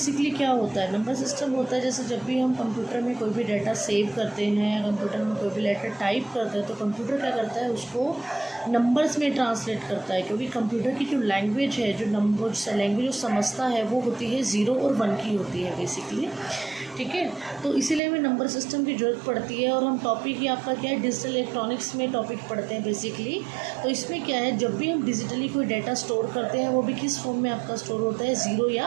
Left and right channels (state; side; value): drops out; left; at 18.0 s